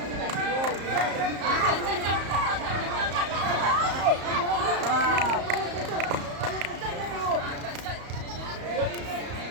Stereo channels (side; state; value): left; late; 34 ms